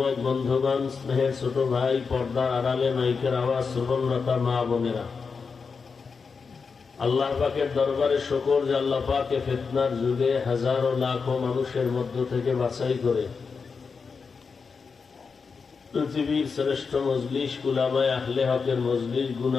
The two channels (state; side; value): quieter; right; 5.2 dB